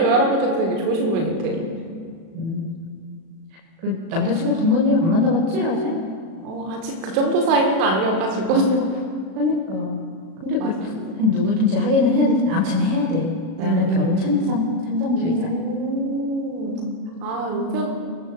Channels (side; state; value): left; late; 36 ms